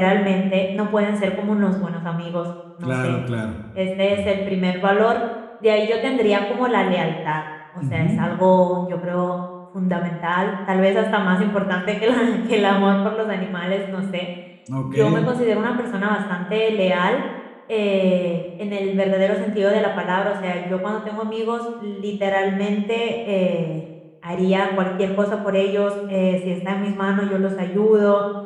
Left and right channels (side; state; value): both; identical; correlation 1.00